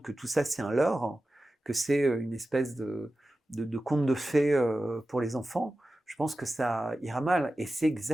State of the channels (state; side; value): normal; both; correlation 0.94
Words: que tout ça c'est un leurre, que c'est une espèce de conte de fées pour les enfants, je pense que ça ira mal. Et c'est